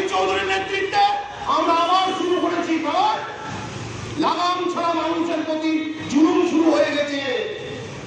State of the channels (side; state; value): both; identical; correlation 1.00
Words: চৌধুরীর নেতৃত্বে আমরা আবার শুরু করেছি, কারণ লাগাম ছাড়া মানুষের প্রতি জুলুম শুরু হয়ে গেছে।